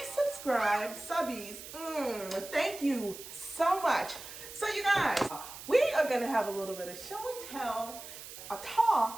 subscribed subbies, thank you so much. So you guys, we are gonna have a little bit of show and tell, a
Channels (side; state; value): right; noise; hiss, 13 dB below the sound